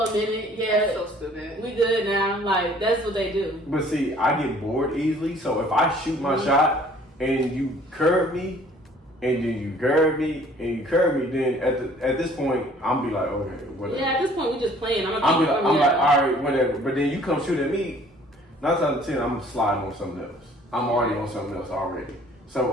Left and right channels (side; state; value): both; normal; correlation 0.55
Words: minute. Yeah, That's so stupid. we good now. Like that's what they do. But see, I get bored easily, so if I shoot my shot and you curve me, and then you curve me, and you curve me, then at this point, I'm be like, okay, whatever. Yeah, at this point we just playing. I'm I'm like, all right, whatever. But then you come shoot at me, 9 times out of 10, I'm sliding on something else. I'm already on something else already.